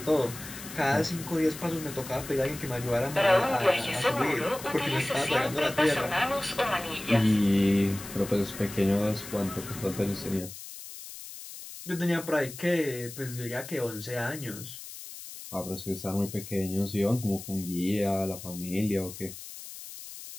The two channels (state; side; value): noise; left; hiss, 13 dB below the sound